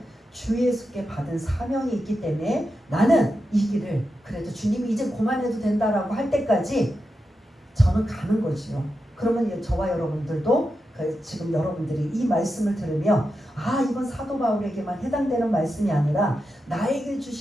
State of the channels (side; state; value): both; normal; correlation 0.88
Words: 주 예수께 받은 사명이 있기 때문에 나는 이 길을 그래도 주님이 이제 그만해도 된다라고 할 때까지 저는 가는 거지요. 그러면 저와 여러분들도 지금 여러분들이 이 말씀을 들으며 이건 사도 바울에게만 해당되는 말씀이 아니라 나에게